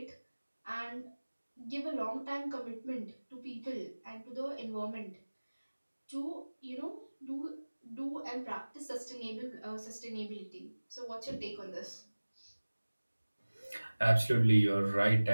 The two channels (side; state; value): both; inverted; correlation -1.00